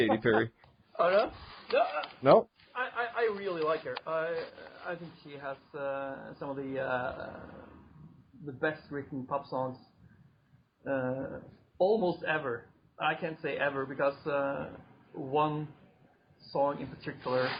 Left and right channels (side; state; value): both; identical; correlation 1.00